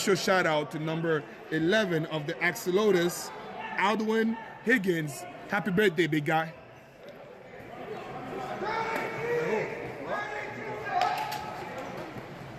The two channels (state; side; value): identical; both; correlation 1.00